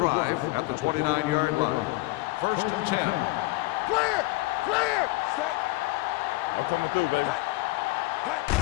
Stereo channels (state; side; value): quieter; right; 21.5 dB